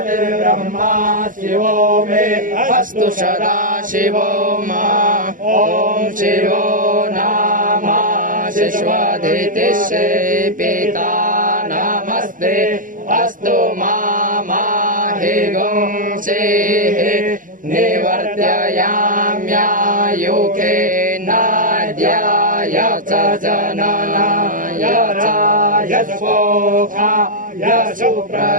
शिवो मे अस्तु सदा शिवो मा ॐ शिवो नाम शिश्वदितिश्री पिता नमस्ते अस्तु माहि गुंसेः निवर्त्ययाम्यायुखे नाद्याय च जननाय च यशोखाय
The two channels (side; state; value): left; late; 0.39 ms